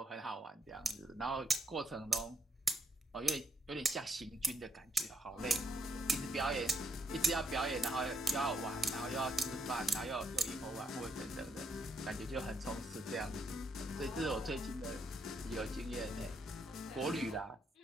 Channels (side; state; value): both; normal; correlation 0.76